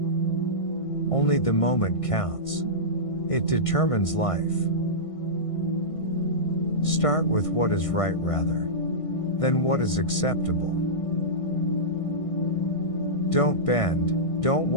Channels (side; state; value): right; late; 1.6 ms